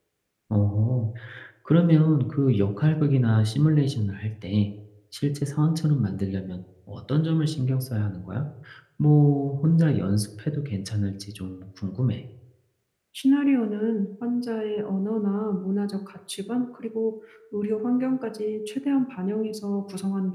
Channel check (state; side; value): identical; both; correlation 1.00